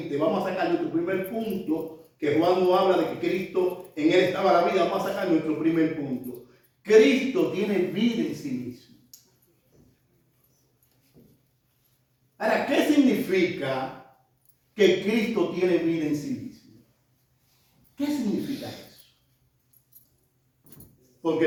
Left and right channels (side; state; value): both; identical; correlation 1.00